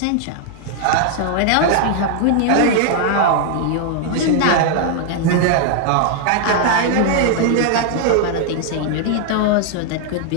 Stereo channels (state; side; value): different; both; correlation 0.00